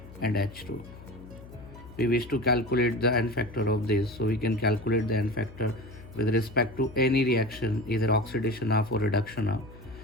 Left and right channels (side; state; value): left; noise; hum, 17 dB below the sound